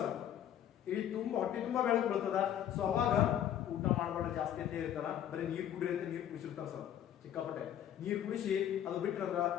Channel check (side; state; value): right; quieter; 10.4 dB